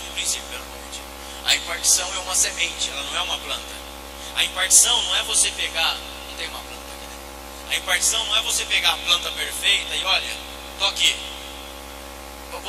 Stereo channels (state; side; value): identical; both; correlation 1.00